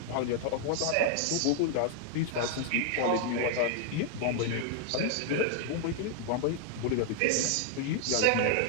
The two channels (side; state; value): both; different; correlation 0.00